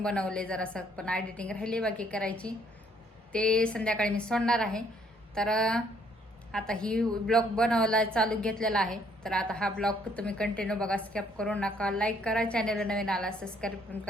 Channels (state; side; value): normal; both; correlation 0.66